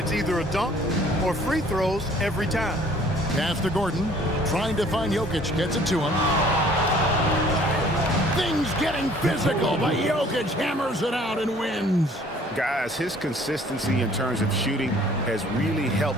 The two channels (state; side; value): normal; both; correlation 0.55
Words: either a dunk or free throws every time. Pass to Gordon, trying to find Jokic, gets it to him. Things getting physical, but Jokic hammers it out and wins. Guys, his consistency in terms of shooting has really